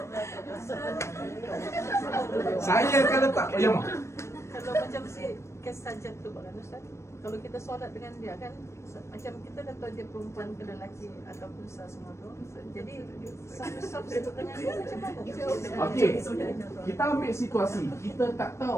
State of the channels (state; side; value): late; right; 0.13 ms